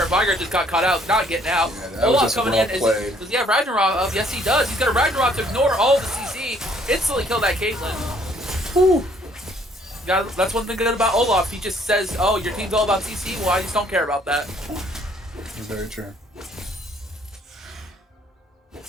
Viger just got caught out, not getting out. Yeah, that was Olaf just coming well in. played. Does he have Ragnarok up? Yes, he does. He's got a Ragnarok to ignore all the CC. Instantly kill that Caitlyn. Whew. That's one thing good about Olaf. He just says, "Oh, your team's all about CC. Well, I just don't care about that." Very true.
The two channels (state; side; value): normal; both; correlation 0.63